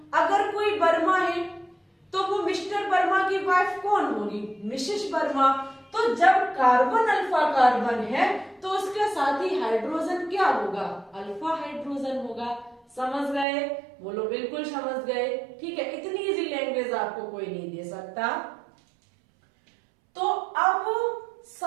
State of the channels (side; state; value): left; drops out; at 13.5 s